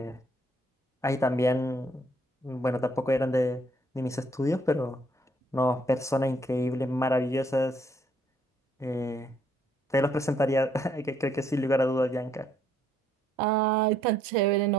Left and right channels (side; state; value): both; normal; correlation 0.68